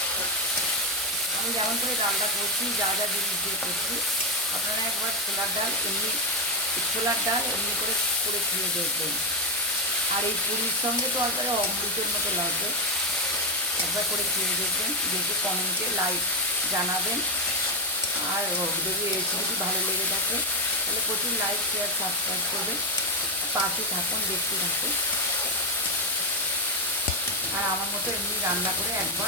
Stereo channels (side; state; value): both; normal; correlation 0.08